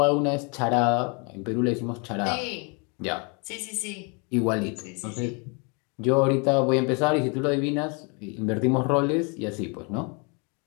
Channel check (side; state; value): right; quieter; 33.8 dB